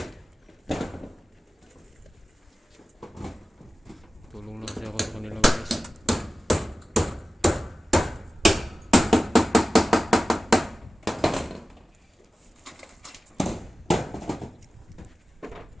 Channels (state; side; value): normal; both; correlation 0.95